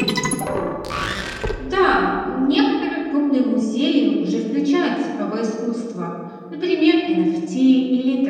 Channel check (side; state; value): both; identical; correlation 1.00